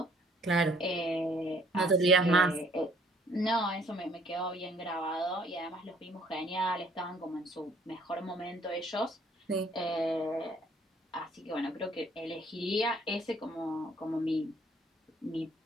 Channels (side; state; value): both; normal; correlation 0.61